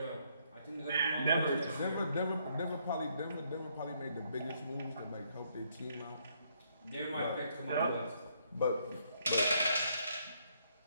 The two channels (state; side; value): inverted; both; correlation -0.71